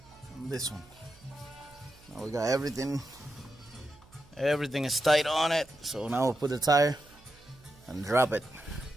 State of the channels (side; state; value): right; noise; hum, 26 dB below the sound